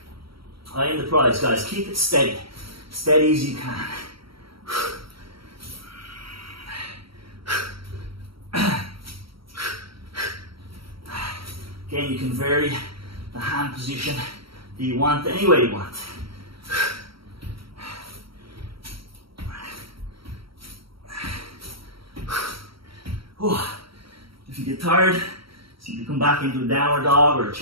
I am the prize, guys. Keep it steady. Steady as you can. Again, you can vary the hand position that you want any way you want. If you get tired, simply come back into a downward dog or a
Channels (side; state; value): left; late; 0.75 ms